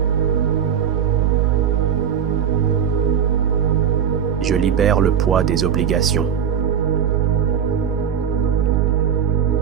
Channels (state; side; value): quieter; left; 8.3 dB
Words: Je libère le poids des obligations.